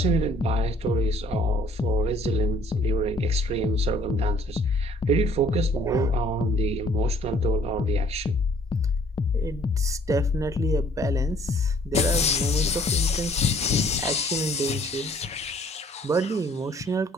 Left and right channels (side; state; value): both; normal; correlation 0.59